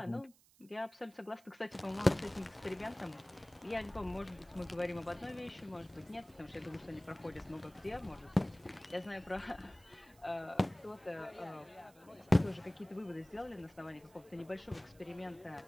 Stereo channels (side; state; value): right; noise; hiss, 27 dB below the sound